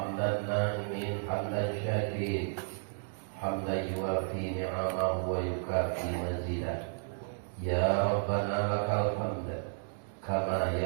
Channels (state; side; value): silent; left; digital silence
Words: na'imin hamdan syakirin. Hamdan yuwafi ni'amahu wa yukafi mazidah. Ya Rabbana lakal hamd kama